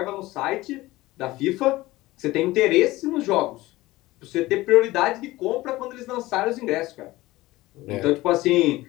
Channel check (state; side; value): quieter; right; 18.6 dB